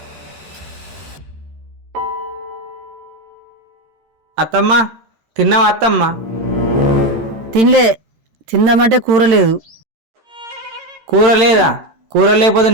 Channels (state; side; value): late; left; 13 ms